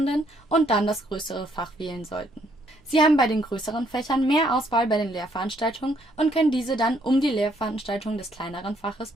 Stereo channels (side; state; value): both; normal; correlation 0.69